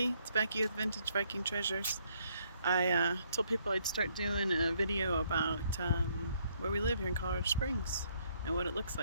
It's Becky with Vintage Viking Treasures. I told people I'd start doing a video about where we live here in Colorado Springs and what it looks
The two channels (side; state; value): both; inverted; correlation -0.69